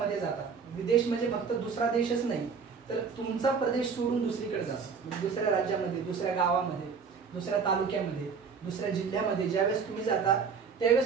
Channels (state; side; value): quieter; left; 5.8 dB